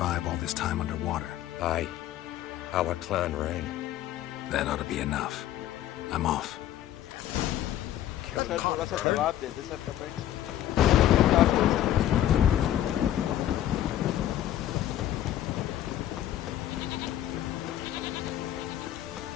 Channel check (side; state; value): right; quieter; 12.3 dB